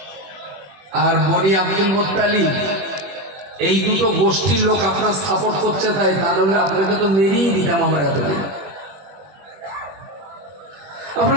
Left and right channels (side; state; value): left; late; 21 ms